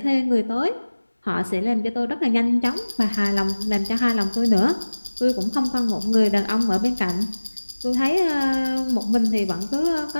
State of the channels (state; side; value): inverted; both; correlation -1.00